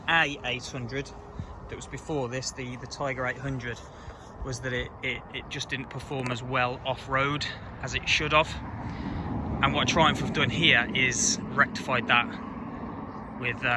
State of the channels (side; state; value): both; identical; correlation 1.00